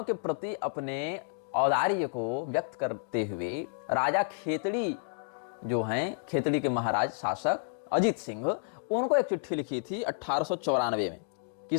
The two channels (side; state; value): right; silent; digital silence